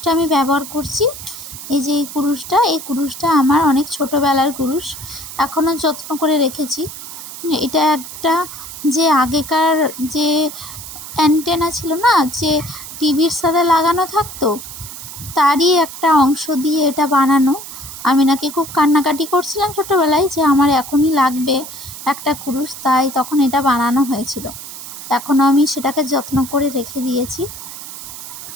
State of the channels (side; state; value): right; noise; hiss, 12 dB below the sound